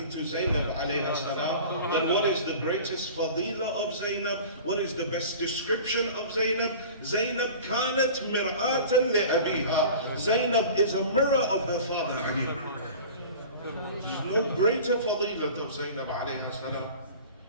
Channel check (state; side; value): inverted; both; correlation -0.40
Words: to Zainab alayha salam. That what is the greatest fadila of Zainab? What is the best description of Zainab? Zainab كانت مرآة لأبيها. Zainab is a mirror of her father Ali. There's no greater fadilat of Zainab alayha salam